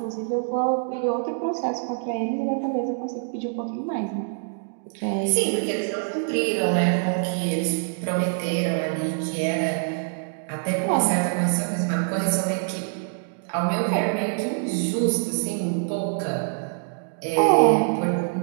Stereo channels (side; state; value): left; silent; digital silence